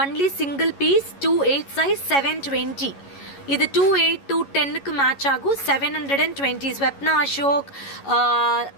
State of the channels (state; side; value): late; right; 11 ms